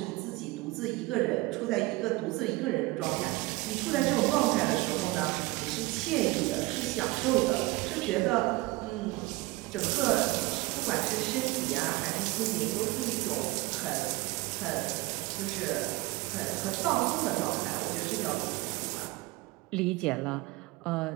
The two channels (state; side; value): quieter; left; 21.3 dB